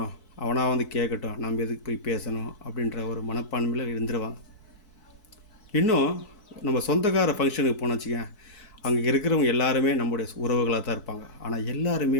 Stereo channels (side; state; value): right; late; 4.6 ms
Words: அவனாக வந்து கேட்கட்டும், நம்ம எதுக்கு போய் பேசணும் அப்படின்ற ஒரு மனப்பான்மையில் இருந்துருவாங்க. இன்னும் நம்ம சொந்தக்கார ஃபங்க்ஷனுக்கு போனோம் வச்சுக்கேன், அங்கே இருக்கிறவங்க எல்லாருமே நம்முடைய உறவுகளாக தான் இருப்பாங்க. ஆனால்